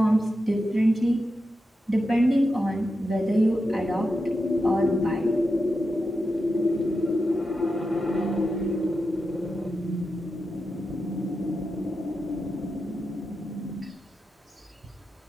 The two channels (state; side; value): normal; both; correlation 0.89